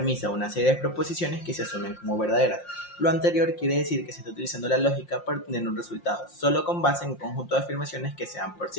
o una serie de proposiciones que se asumen como verdaderas. Lo anterior quiere decir que se está utilizando la lógica para obtener un resultado, solo con base en un conjunto de afirmaciones que sean por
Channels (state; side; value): late; right; 5.7 ms